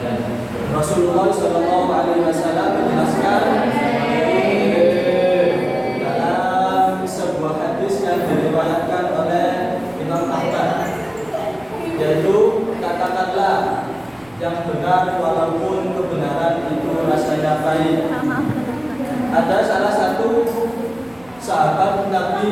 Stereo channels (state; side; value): noise; right; rumble, 28 dB below the sound